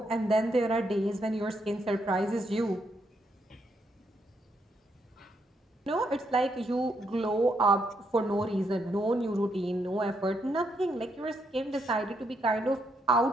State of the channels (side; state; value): both; normal; correlation 0.77